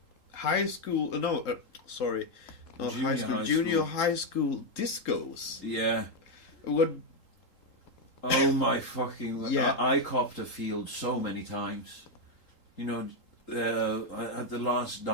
high school. Sorry, not Junior high school. high Junior school. high school discos. Yeah. What? Oh my fucking... Yeah. I copped a field so many times. You know, at the last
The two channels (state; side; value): late; right; 3.8 ms